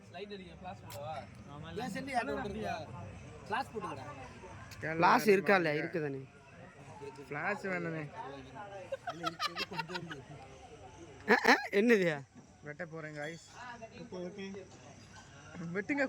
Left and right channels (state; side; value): identical; both; correlation 1.00